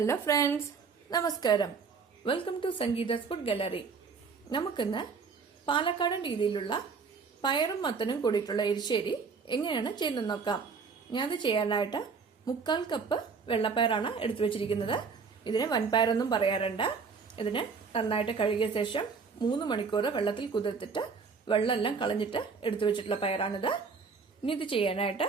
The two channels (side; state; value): left; quieter; 5.3 dB